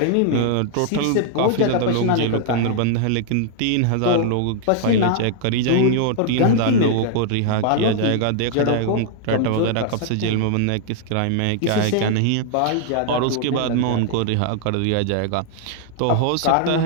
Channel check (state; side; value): different; both; correlation 0.00